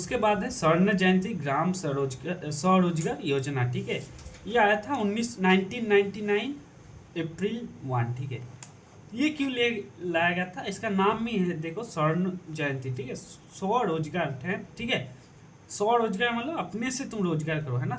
बाद है स्वर्ण जयंती ग्राम स्वरोजगार योजना, ठीक है। ये आया था 1999 अप्रैल 1, ठीक है। ये क्यों लाया गया था, इसका नाम ही है देखो स्वर्ण जयंती, ठीक है, स्वरोजगार है, ठीक है। स्वरोजगार मतलब अपने से तुम रोजगार करो, है ना,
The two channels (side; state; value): both; identical; correlation 1.00